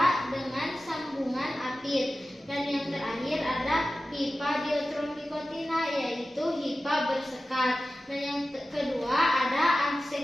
dengan sambungan apit. Dan yang terakhir ada hipa dithromicotina, yaitu hipa bersekat. Dan yang kedua ada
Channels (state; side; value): normal; both; correlation 0.95